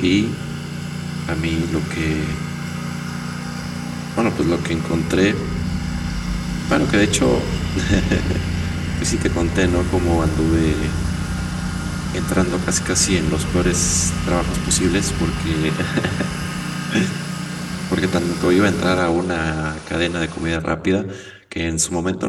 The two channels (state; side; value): identical; both; correlation 1.00